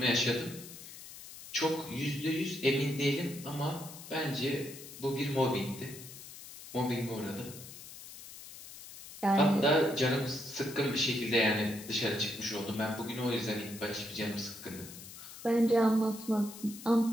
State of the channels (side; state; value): left; noise; hiss, 14 dB below the sound